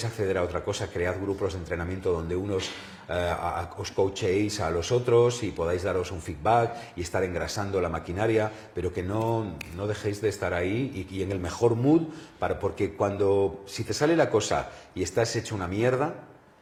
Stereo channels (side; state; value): both; identical; correlation 1.00